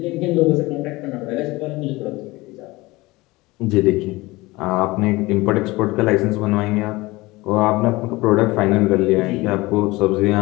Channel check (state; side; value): quieter; right; 21.2 dB